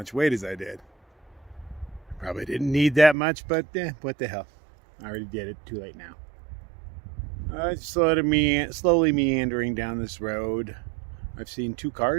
weight as I did. Probably didn't need that much, but what the hell. I already did it. Too late now. Slowly meandering down this road. I've seen 2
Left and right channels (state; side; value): drops out; left; at 3.2 s